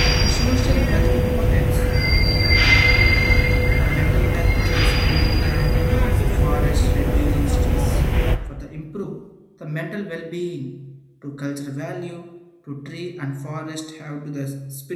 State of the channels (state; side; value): identical; both; correlation 1.00